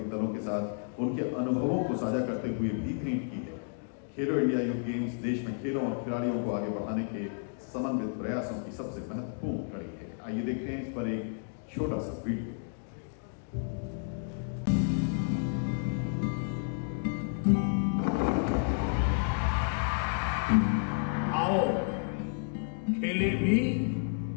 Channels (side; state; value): right; silent; digital silence